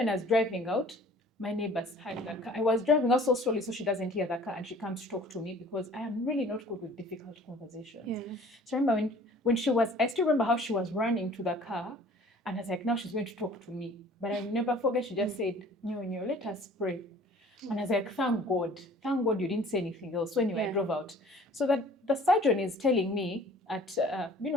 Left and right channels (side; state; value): both; normal; correlation 0.50